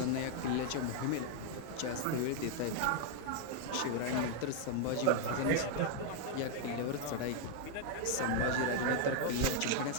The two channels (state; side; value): different; both; correlation 0.00